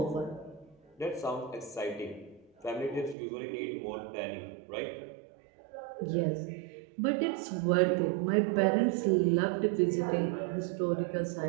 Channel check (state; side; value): drops out; left; at 3.2 s